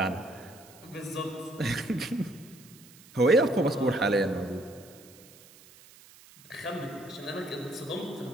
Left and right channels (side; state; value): right; noise; hiss, 23 dB below the sound